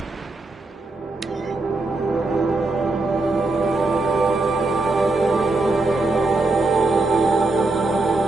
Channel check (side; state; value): left; quieter; 3.2 dB